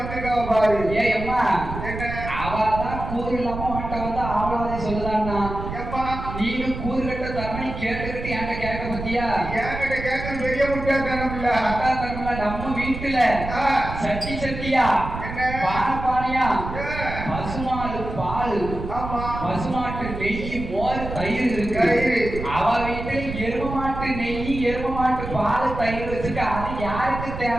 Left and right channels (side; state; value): right; noise; rumble, 7 dB below the sound